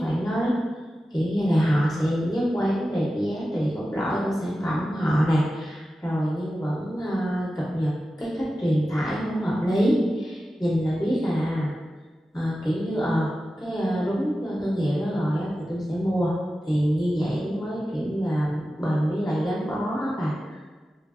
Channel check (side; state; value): both; normal; correlation 0.93